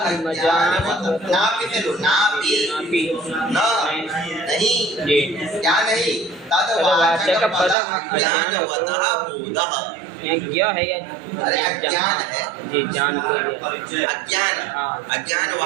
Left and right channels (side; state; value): left; drops out; at 7.8 s